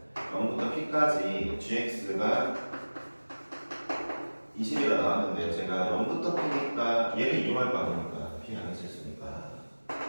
0부터 p까지 gx가 20이라 나왔는데 제가 0부터 p니까 얘를 이용할 거 아닙니까? p 안에 있으니까.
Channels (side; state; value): both; inverted; correlation -1.00